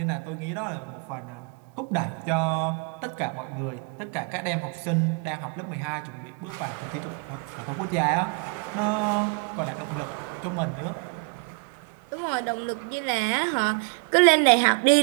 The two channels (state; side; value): quieter; left; 32.7 dB